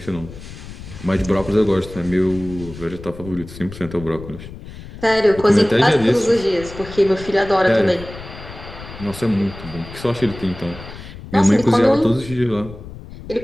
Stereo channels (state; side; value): noise; left; rumble, 14 dB below the sound